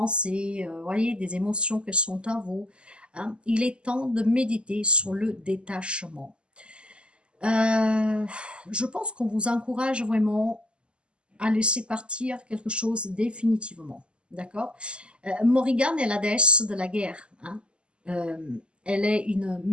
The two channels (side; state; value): left; late; 0.051 ms